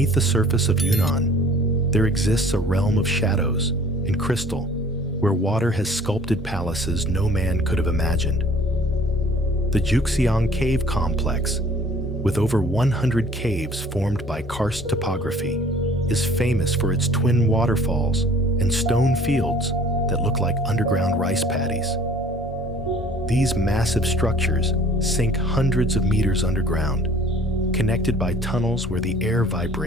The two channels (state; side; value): normal; both; correlation 0.52